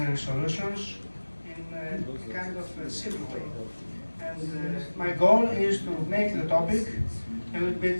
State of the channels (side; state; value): both; inverted; correlation -1.00